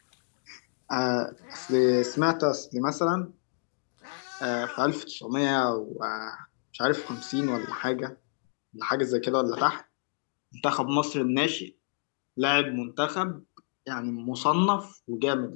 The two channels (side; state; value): right; silent; digital silence